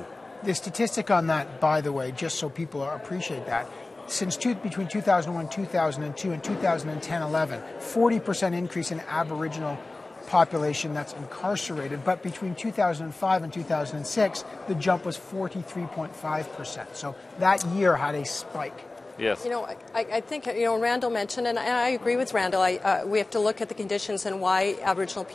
The statistic on that, by the way, just so people appreciate that, between 2001, 2002, and 2010-11, 40% increase in Aboriginal population that's incarcerated. But between 2005 and 2006, the jump was 43.5%. So that year had a spike. Yes. I think, Randall mentioned, and I agree with Randall, we have to look at the conditions and why Aboriginal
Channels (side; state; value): right; quieter; 3.1 dB